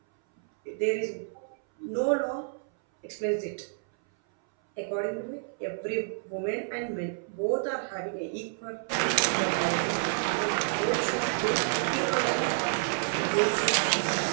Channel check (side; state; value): left; silent; 58 dB below the other